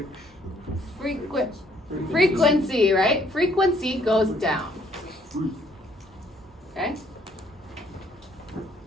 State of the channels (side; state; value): both; normal; correlation 0.65